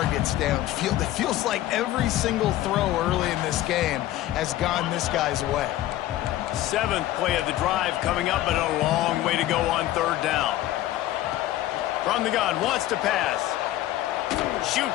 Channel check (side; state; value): right; quieter; 14.4 dB